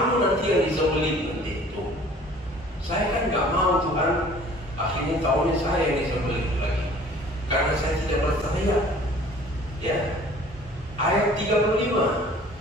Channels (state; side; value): normal; both; correlation 0.50